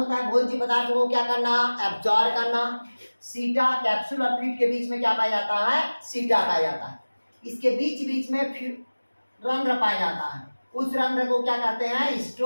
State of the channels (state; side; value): inverted; both; correlation -1.00